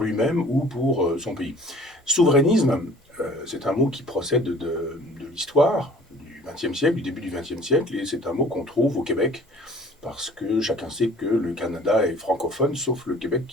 lui-même ou pour son pays. Souverainisme, c'est un mot qui procède de l'histoire du XXe siècle, du début du XXe siècle, et c'est un mot qu'on trouve au Québec, parce que chacun sait que le Canada est francophone, sauf le Québec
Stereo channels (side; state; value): both; normal; correlation 0.51